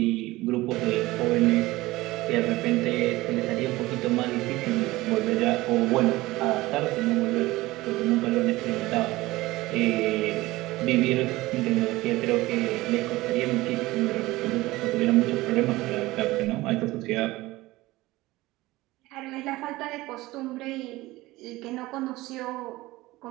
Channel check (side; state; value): left; quieter; 19.0 dB